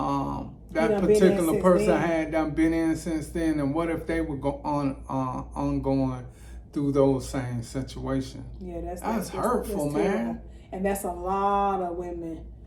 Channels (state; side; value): identical; both; correlation 1.00